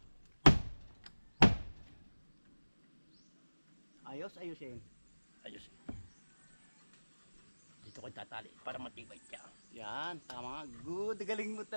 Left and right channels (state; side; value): inverted; both; correlation -1.00